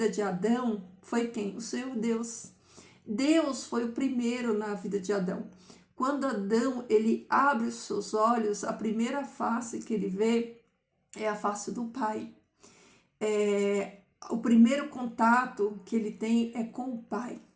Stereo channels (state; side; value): identical; both; correlation 1.00